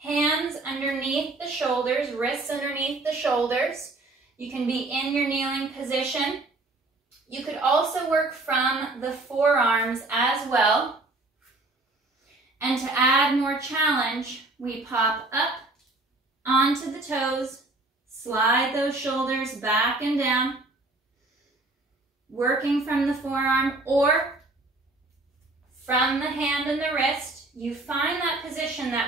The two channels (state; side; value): quieter; left; 3.0 dB